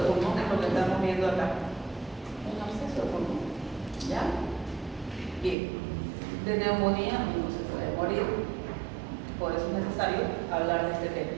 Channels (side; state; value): left; drops out; at 5.6 s